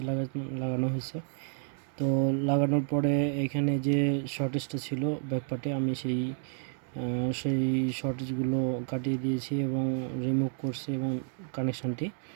লাগানো হয়েছে। তো লাগানোর পরে এখানে যে শর্টেজটা ছিল ব্যাকপার্টে আমি সেই শর্টেজগুলো কাটিয়ে দিয়েছি এবং রিমুভ করছি এবং কানেকশানটি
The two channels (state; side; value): silent; left; 58 dB below the other